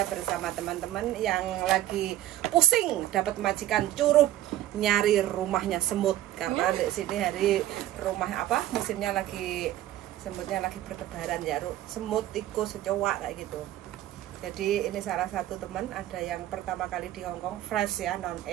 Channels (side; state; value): left; quieter; 13.8 dB